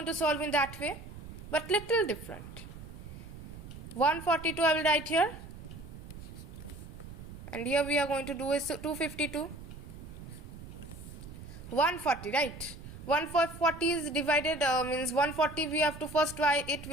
to solve in that way, but little different. 142 I will write here, and here we are going to do is 252. 140, right? 140 is divided, means 140 we have to first try it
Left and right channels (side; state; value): right; noise; rumble, 13 dB below the sound